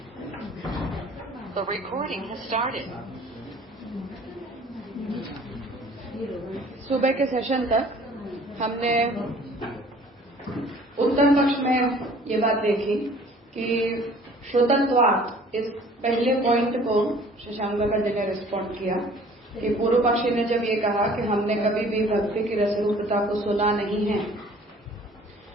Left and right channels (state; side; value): normal; both; correlation 0.52